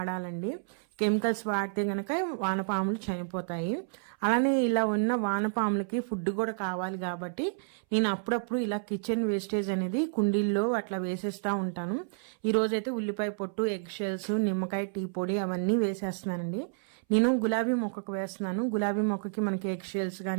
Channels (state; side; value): silent; left; 58 dB below the other